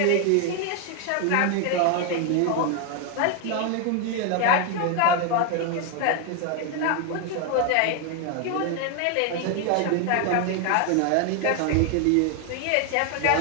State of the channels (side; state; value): both; different; correlation 0.01